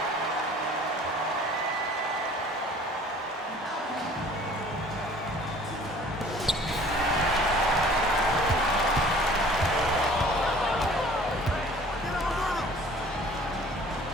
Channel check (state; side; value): normal; both; correlation 0.50